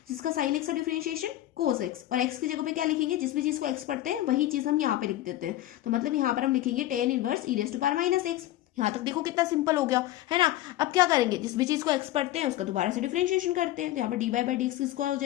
जिसका साइन एक्स का डिफरेंशिएशन कोस एक्स, और एक्स की जगह पे क्या लिखेंगे, जिस भी चीज को एक्स पढ़ते हैं वही चीज हम यहाँ पे लिख देते हैं। तो मतलब यहाँ पर हम लिखेंगे tan inverse e raise to power minus x. यहाँ तक देखो कितना सिंपल हो गया, है ना। अब क्या करेंगे, जिस भी चीज को एक्स पढ़ते हैं उसका दोबारा से डिफरेंशिएशन करते हैं। तो यहाँ पर d y by d x किसका हो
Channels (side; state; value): right; quieter; 14.7 dB